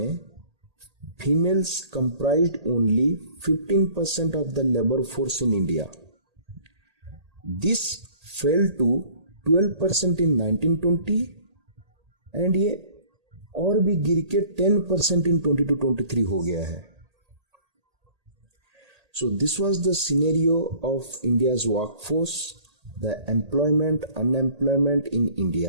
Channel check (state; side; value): late; left; 1.8 ms